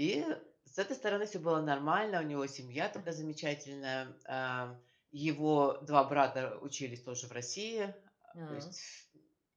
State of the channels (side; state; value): both; identical; correlation 1.00